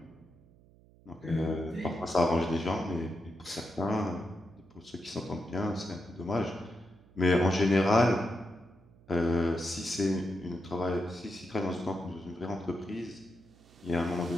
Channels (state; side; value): noise; right; hum, 26 dB below the sound